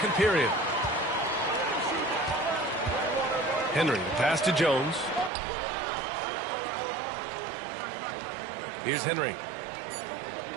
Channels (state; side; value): drops out; left; at 5.3 s